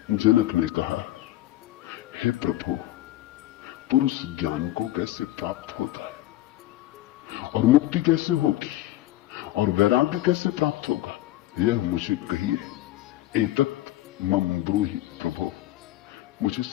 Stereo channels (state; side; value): quieter; right; 15.6 dB